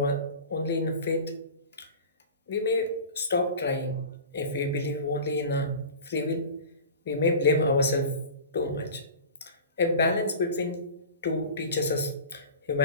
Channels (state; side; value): inverted; both; correlation -0.36